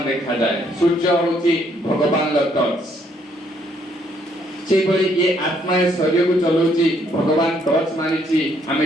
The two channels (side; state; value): both; normal; correlation 0.69